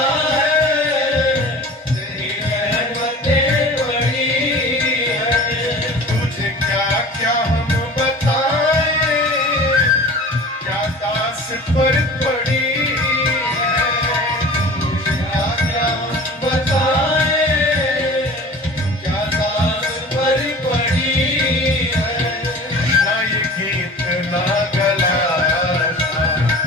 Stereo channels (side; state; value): both; normal; correlation 0.40